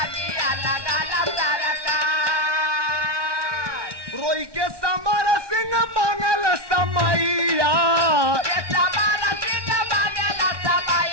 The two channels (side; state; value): left; late; 1.2 ms